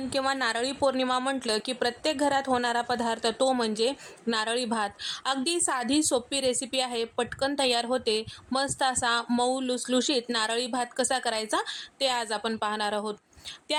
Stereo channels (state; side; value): identical; both; correlation 1.00